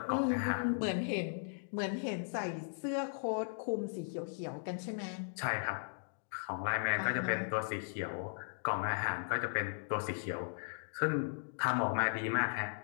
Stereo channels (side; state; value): right; silent; digital silence